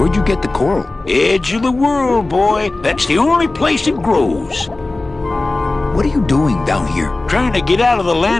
you get the coral? Edge of the world, boy. That's the only place it grows. What are you doing down here? Trying to get out of the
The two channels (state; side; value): quieter; right; 3.1 dB